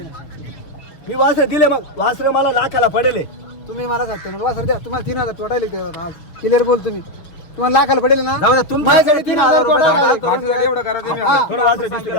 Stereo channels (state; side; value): late; right; 6.7 ms